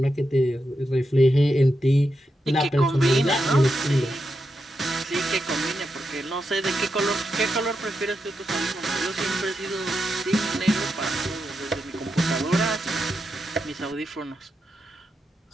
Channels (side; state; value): both; normal; correlation 0.86